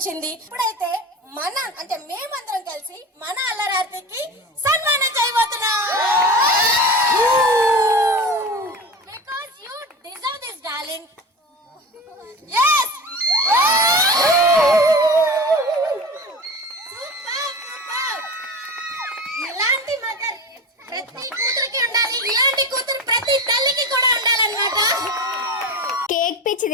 ఇప్పుడైతే మేమందరం కలిసి మన అల్లరి ఆర్తికి సన్మానం చేయబోతున్నాం. Because you deserve this, darling. Yes. Super. ఇలాంటి మదర్ ప్రతి కూతురికి ఉండాలి, ఇలాంటి కూతురు ప్రతి తల్లికి కూడా ఉండాలన్నమాట. కేక్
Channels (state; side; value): normal; both; correlation 0.30